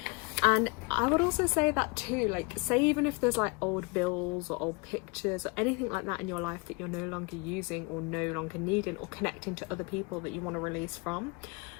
And I would also say that too, like, say even if there's like old bills or old pictures or anything like that in your life that you're no longer using or no longer needing, or connecting to other people that you want to release from,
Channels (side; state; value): right; quieter; 28.0 dB